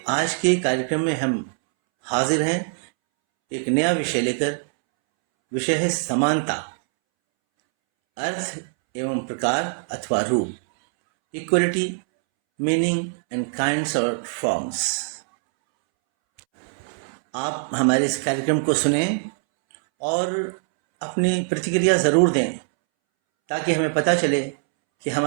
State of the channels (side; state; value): left; silent; 64 dB below the other